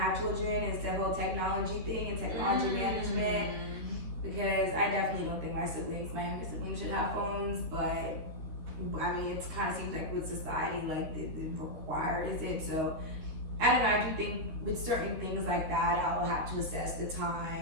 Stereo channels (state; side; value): late; left; 13 ms